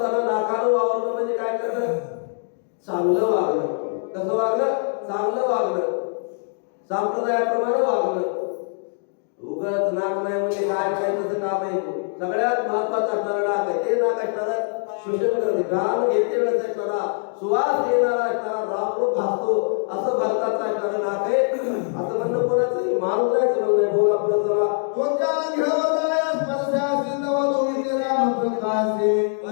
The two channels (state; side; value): silent; right; digital silence